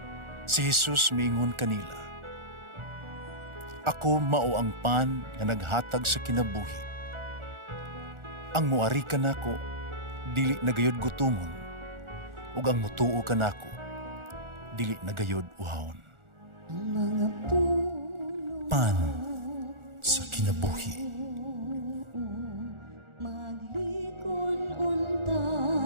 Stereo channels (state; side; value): late; left; 1.4 ms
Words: Si Jesus miingon kanila, "Ako mao ang pan nga naghatag sa kinabuhi. Ang muari kanako dili nagayod gutomon, ug ang mutuo kanako dili nagayod uhawon." Ang mga puno Pan sa kinabuhi. maglikon unta